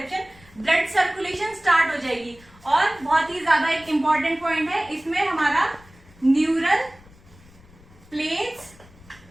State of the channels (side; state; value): left; noise; rumble, 25 dB below the sound